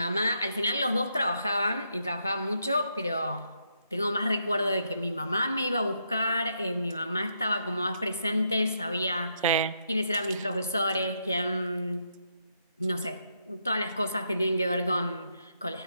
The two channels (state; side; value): inverted; both; correlation -0.78